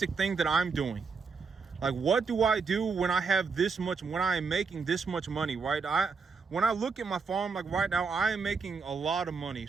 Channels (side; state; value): left; quieter; 5.0 dB